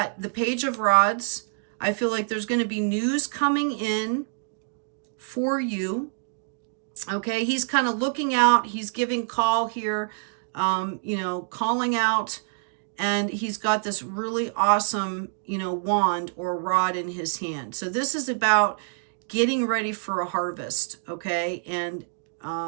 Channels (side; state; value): left; silent; digital silence